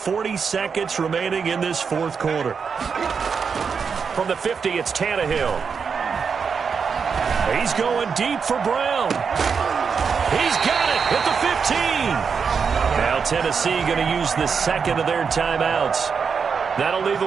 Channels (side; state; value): left; quieter; 6.0 dB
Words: seconds remaining in this 4th quarter. From the 50, it's Tannehill. He's going deep for Brown. He's got it at the 15. Now Tennessee going to use the 2nd of their timeouts. That'll leave